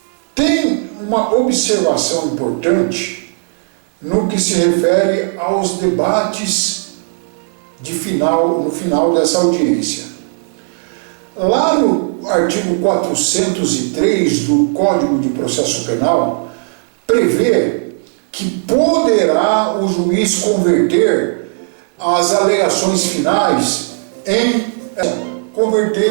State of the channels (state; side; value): silent; left; digital silence